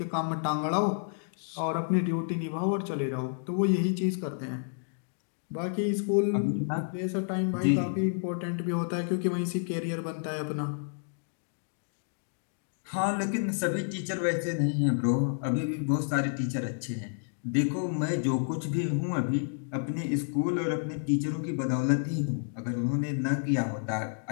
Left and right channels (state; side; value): silent; right; digital silence